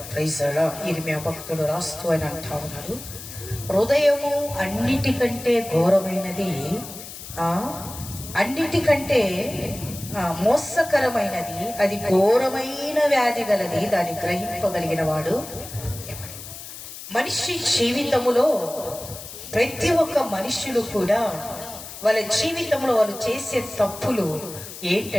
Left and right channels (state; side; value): noise; left; hiss, 12 dB below the sound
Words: Praise the Lord. ఇర్మియా భక్తుడు రాస్తూ అని అంటా ఉన్నారు, హృదయము అన్నిటికంటే ఘోరమైనది, అన్నిటికంటే మోసకరమైనది, అది ఘోరమైన వ్యాధి గలది, దాన్ని గ్రహింపగలిగిన వాడు ఎవడు. మనిషి జీవితములో ప్రతి ఒక్క మనుషులు కూడా వాళ్ళ జీవితంలో వాళ్ళు చేసే తప్పులు